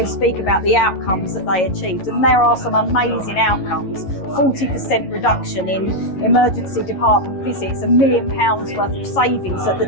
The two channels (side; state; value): right; late; 11 ms